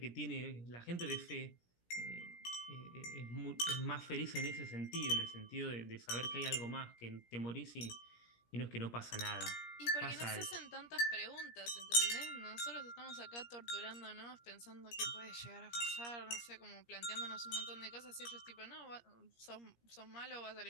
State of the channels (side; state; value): right; late; 17 ms